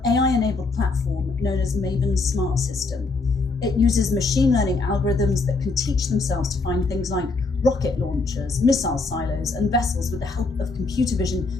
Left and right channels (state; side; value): quieter; right; 3.8 dB